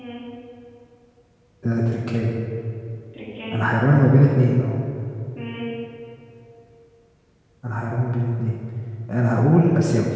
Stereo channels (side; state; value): both; identical; correlation 1.00